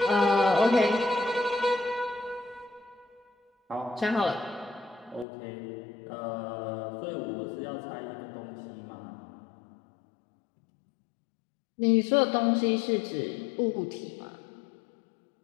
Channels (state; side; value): drops out; right; at 5.2 s